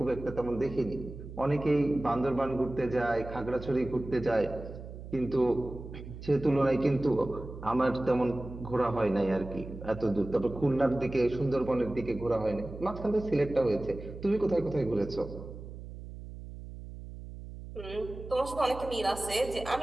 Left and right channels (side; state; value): right; noise; hum, 12 dB below the sound